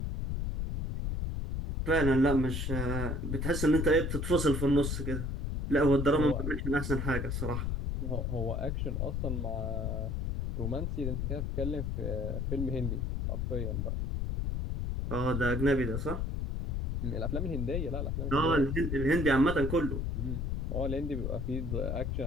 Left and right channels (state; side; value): noise; left; rumble, 1 dB below the sound